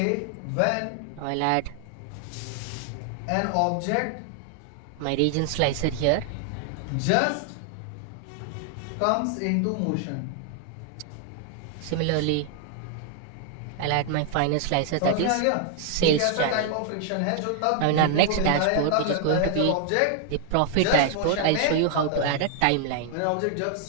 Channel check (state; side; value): different; both; correlation 0.00